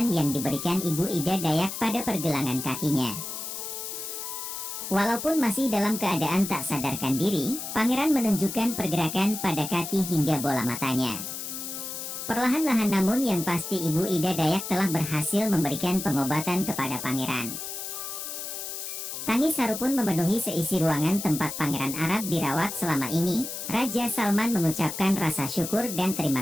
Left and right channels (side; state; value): left; noise; hiss, 7 dB below the sound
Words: yang diberikan Ibu Ida Dayak pada pergelangan kakinya. Walaupun masih dalam keadaan tak sadarkan diri, pangeran menunjukkan pergerakan pada kaki hingga bola matanya. Perlahan-lahan namun yang pasti Ibu Ida Dayak telah berhasil memberikan pengobatan kepada pangeran. Tangis haru pun memenuhi seisi ruangan tempat Pangeran Arab dirawat selama ini. Raja Salman mengucapkan rasa syukur dan